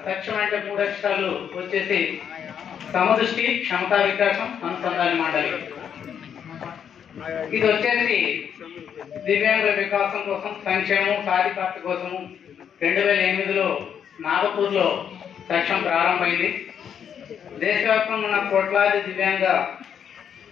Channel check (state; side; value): quieter; right; 8.2 dB